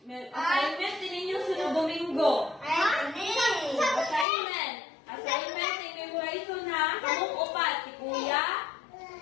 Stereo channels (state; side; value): drops out; right; at 4.2 s